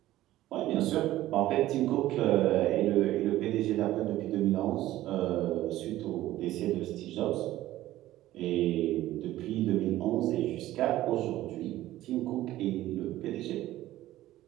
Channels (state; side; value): quieter; left; 15.1 dB